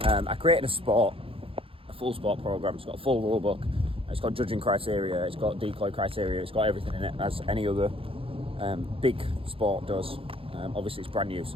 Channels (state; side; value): late; left; 0.27 ms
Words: created a full sport program. It's got a full rule book. It's got judging criteria. It's got decoy criteria. It's got everything in it as any other big sport does. Obviously, it's brand new, so